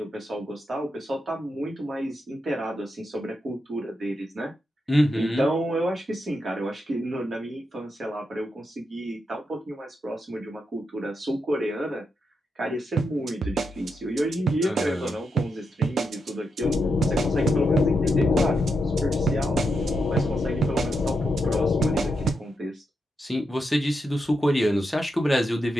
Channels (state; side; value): normal; both; correlation 0.84